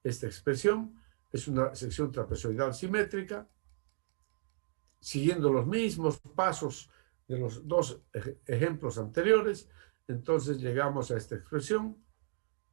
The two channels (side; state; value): left; silent; digital silence